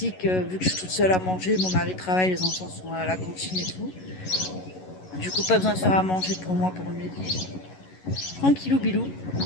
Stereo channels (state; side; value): late; right; 11 ms